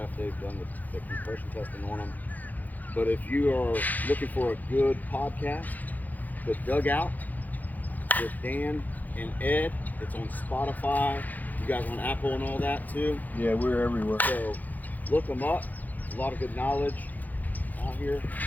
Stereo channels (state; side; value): late; right; 0.082 ms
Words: they've done the compression testing on them. But if you are looking for a good podcast, The Dugout with Dan and Ed, it's on Spotify. You guys on Apple and all that too. Yeah, we're everywhere. So look them up. A lot of good knowledge out here